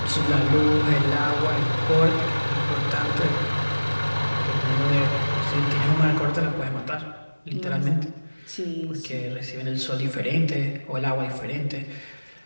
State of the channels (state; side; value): inverted; both; correlation -1.00